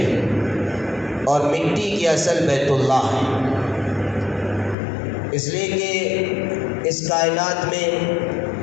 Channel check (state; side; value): drops out; right; at 4.8 s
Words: اور مٹی کی اصل بیت اللہ ہے، اس لیے کہ اس کائنات میں